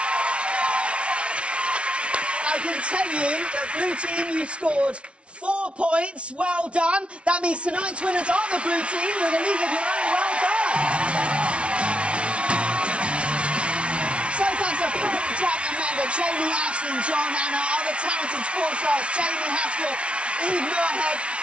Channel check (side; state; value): left; late; 0.060 ms